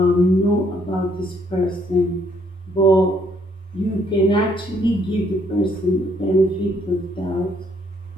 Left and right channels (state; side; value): normal; both; correlation 0.67